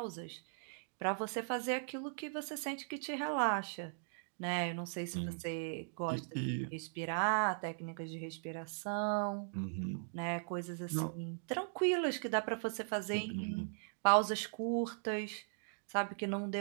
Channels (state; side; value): silent; left; digital silence